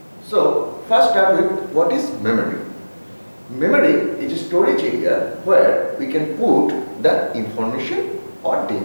So first start with what is memory. Memory is a storage area where we can put the information or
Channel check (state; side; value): inverted; both; correlation -1.00